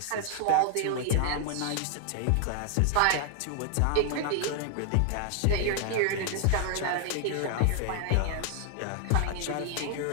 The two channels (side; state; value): both; different; correlation 0.00